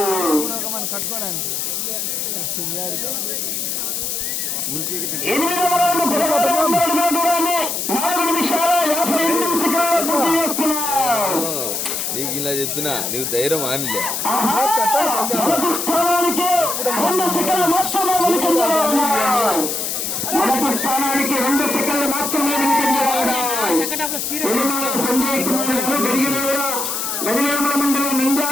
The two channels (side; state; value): left; noise; hiss, 2 dB below the sound